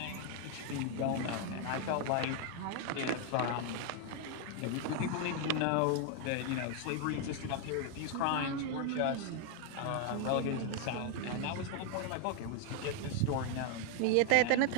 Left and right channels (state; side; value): different; both; correlation 0.00